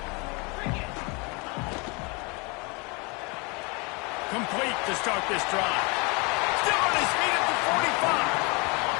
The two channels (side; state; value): right; quieter; 29.5 dB